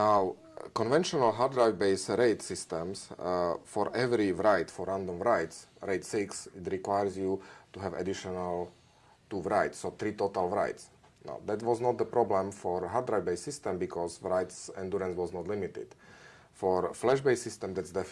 conventional hard drive based RAID systems, for every write, for random writes, RAID 6, it requires you to have additional 2 writes, so 3 total writes. Now, that was not the problem for hard drive based system because writes endurance was not limited. For flash based system, that's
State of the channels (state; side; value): identical; both; correlation 1.00